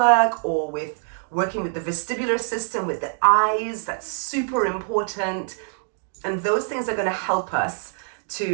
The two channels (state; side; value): silent; left; 57 dB below the other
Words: or with working with the vestibular system, with the eyes. That's super important. And those things are going to help us